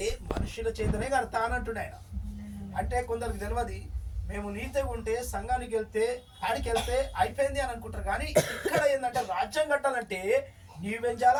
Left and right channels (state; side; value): identical; both; correlation 1.00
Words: మనుషుల చేతనే కడతా అన్నట్టు ఆయన. అంటే కొందరికి తెలియదు, మేము నీతిగా ఉంటే సంఘానికి వెళ్తే ఆడికి వెళ్తే అయిపోయింది అని అనుకుంటారు. కానీ ఇక్కడ ఏంటంటే రాజ్యం కట్టాలంటే నీవేం